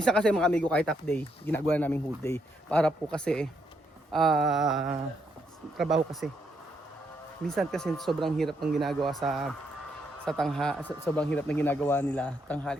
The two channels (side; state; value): both; normal; correlation 0.76